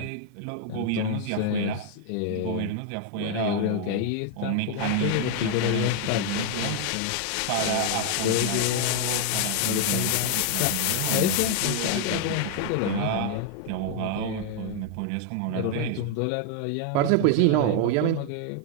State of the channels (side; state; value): both; different; correlation 0.00